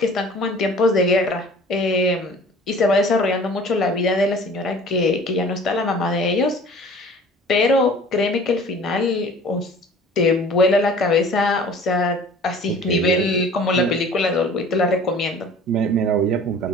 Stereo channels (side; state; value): both; normal; correlation 0.47